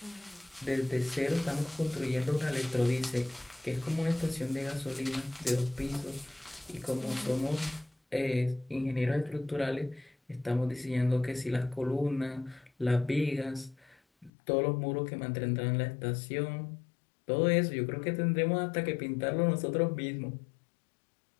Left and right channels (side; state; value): right; drops out; at 14.3 s